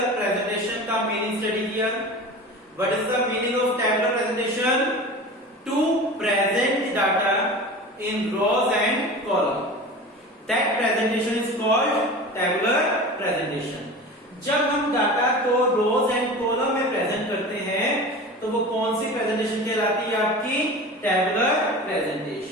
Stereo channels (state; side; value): normal; both; correlation 0.34